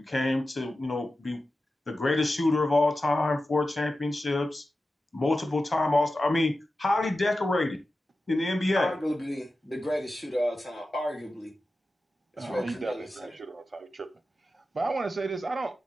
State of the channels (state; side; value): normal; both; correlation 0.93